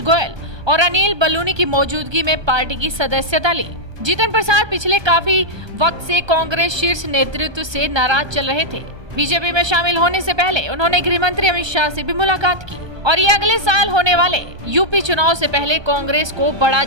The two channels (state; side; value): late; left; 1.3 ms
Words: गोयल और अनिल बलूनी की मौजूदगी में पार्टी की सदस्यता ली। जीतन प्रसाद पिछले काफी वक्त से कांग्रेस शीर्ष नेतृत्व से नाराज चल रहे थे। बीजेपी में शामिल होने से पहले उन्होंने गृह मंत्री अमित शाह से भी मुलाकात की और ये अगले साल होने वाले यूपी चुनाव से पहले कांग्रेस को बड़ा